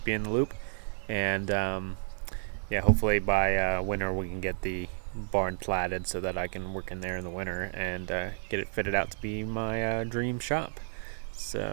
you in the loop. And yeah, hopefully by winter we can get the barn platted so that I can work in there in the winter and get it fitted out to be my dream shop.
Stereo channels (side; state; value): left; silent; 57 dB below the other